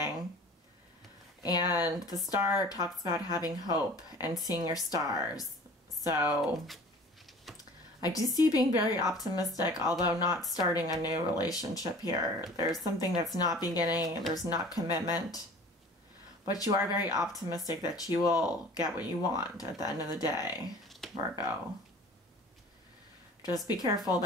And the Star talks about having hope and seeing your stars. So I do see you being very optimistic, although not starting a new relationship here. There's something that's not beginning, there's not commitment. But you are very optimistic that you will get what you want at the end of the day, Virgo. Just be careful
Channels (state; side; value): normal; both; correlation 0.45